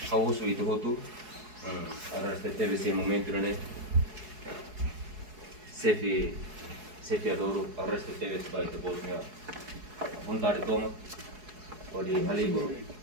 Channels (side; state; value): left; late; 4.7 ms